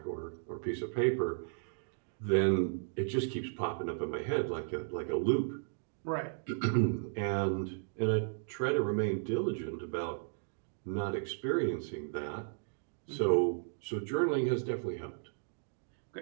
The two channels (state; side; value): silent; left; digital silence